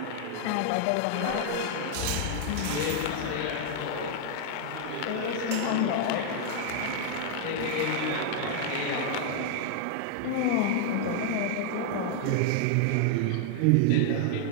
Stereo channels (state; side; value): different; both; correlation 0.00